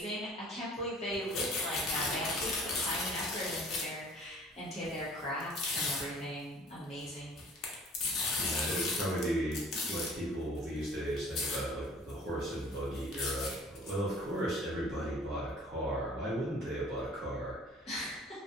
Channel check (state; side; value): normal; both; correlation 0.51